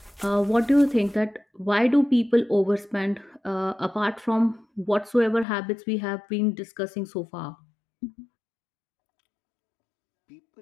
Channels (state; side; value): drops out; right; at 5.5 s